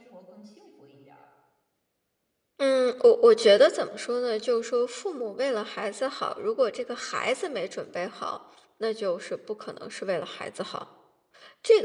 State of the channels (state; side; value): identical; both; correlation 1.00